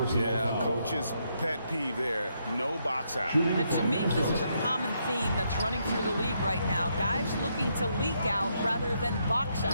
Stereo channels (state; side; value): inverted; both; correlation -0.77